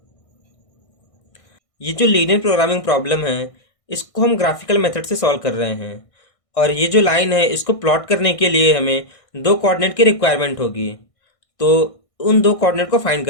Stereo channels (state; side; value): late; right; 1.6 ms